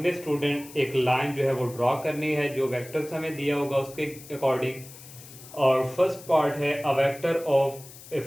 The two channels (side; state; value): left; noise; hiss, 18 dB below the sound